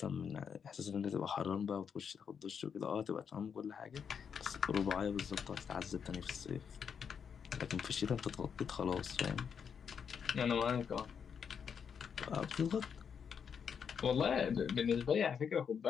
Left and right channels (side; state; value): right; quieter; 7.0 dB